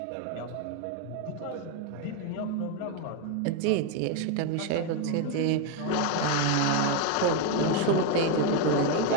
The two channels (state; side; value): different; both; correlation 0.01